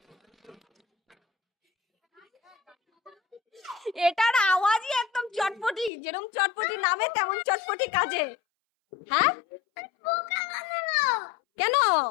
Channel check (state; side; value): drops out; right; at 5.9 s